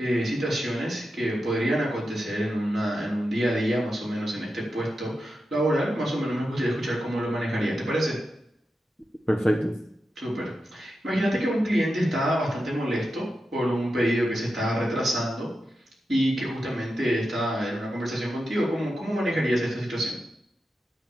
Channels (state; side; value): normal; both; correlation 0.89